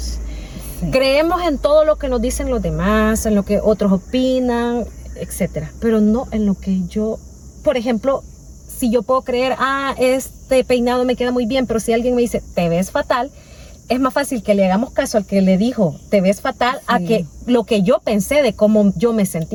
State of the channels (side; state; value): both; identical; correlation 1.00